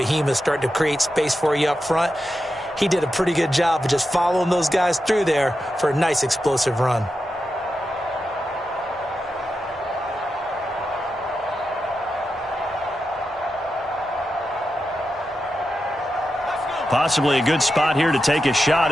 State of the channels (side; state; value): both; normal; correlation 0.89